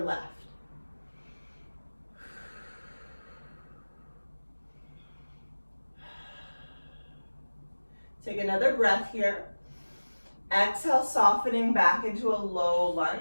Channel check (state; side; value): inverted; both; correlation -1.00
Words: Take another breath here. Exhale, softening back into a low